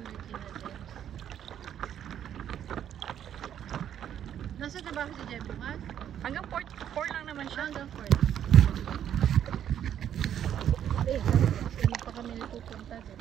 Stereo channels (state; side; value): quieter; left; 9.9 dB